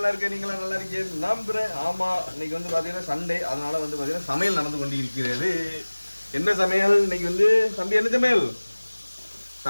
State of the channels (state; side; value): inverted; both; correlation -1.00